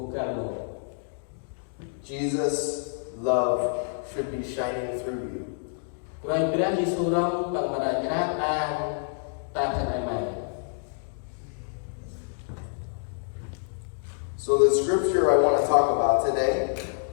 ca mồ Jesus' love should be shining through you. Quanh Brah Giêsu rong bằng mà đại rác an ta thân ai mày. So the scripture I want to talk about today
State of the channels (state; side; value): silent; right; digital silence